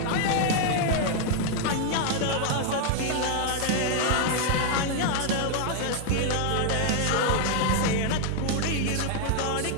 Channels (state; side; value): different; both; correlation 0.00